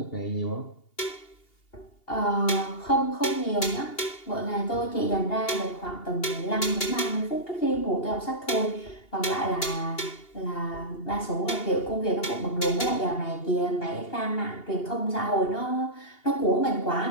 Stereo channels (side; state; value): right; late; 2.8 ms